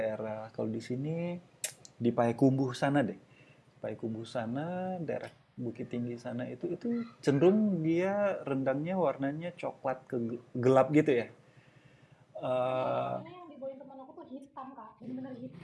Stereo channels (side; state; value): both; identical; correlation 1.00